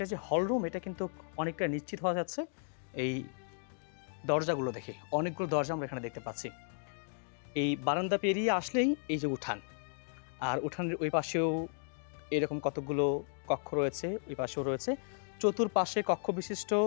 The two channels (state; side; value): silent; right; digital silence